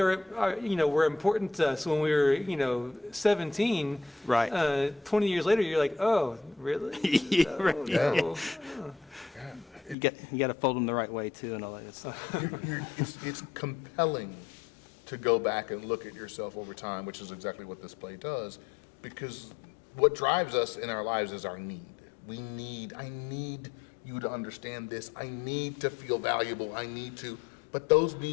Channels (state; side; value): drops out; right; at 10.0 s